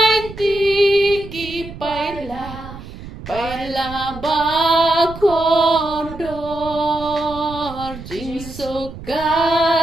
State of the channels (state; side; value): noise; right; rumble, 13 dB below the sound